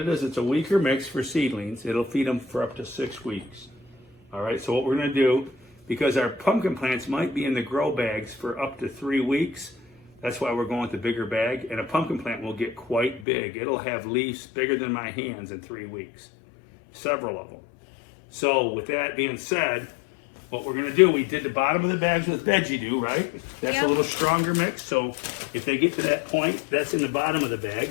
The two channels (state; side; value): drops out; right; at 13.2 s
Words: a weaker mix for seedlings. It'll feed them for up to 6 weeks. All right, so what we're gonna do, because our pumpkin plants might be in the grow bags for up to 3 weeks, that's why we're going with the bigger bag. And a pumpkin plant will get quite big. It'll have leaves bigger than my hands in 3 weeks. Several of them. So with that being said, what we're gonna do, we did the bottom of the bags with veggie dew, right? That's Yep. a little stronger mix. So if they get to that point, that's in the bottom of the bag.